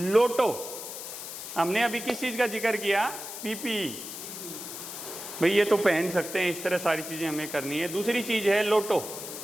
हमने अभी किस चीज़ का जिक्र किया? पीपीई। भाई ये तो पहन सकते हैं, इस तरह सारी चीज़ें हमें करनी है। दूसरी चीज़ है लोटो।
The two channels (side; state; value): left; noise; hiss, 9 dB below the sound